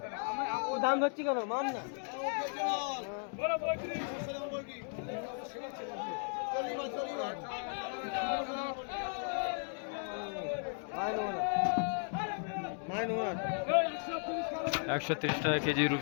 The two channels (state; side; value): silent; right; 54 dB below the other